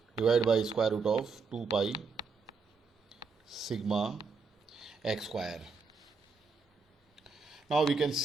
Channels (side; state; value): left; quieter; 4.5 dB